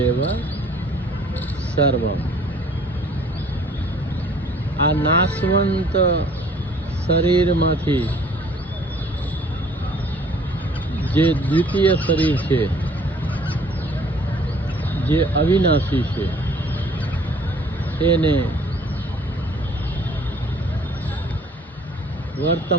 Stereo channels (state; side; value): normal; both; correlation 0.56